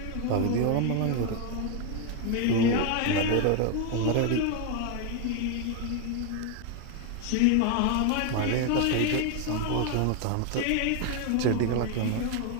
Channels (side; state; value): both; different; correlation 0.01